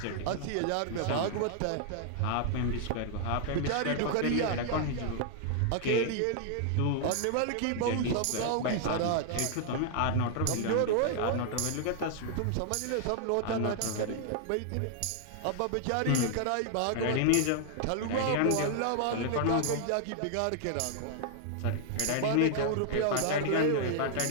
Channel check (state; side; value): different; both; correlation 0.00